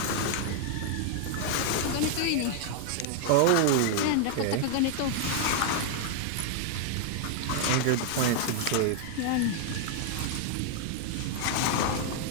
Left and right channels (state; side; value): different; both; correlation 0.00